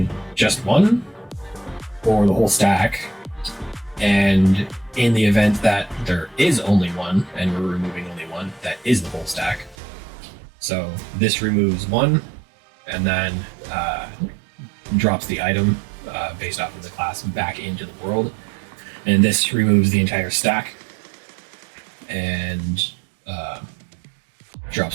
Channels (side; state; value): left; drops out; at 9.8 s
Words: just 1 or the whole stack. And in the event that there is only 1 and we're removing only 1, that is the whole stack. So this removes 1 and then drops the item based off of the class back into the world. And this removes the entire stack. And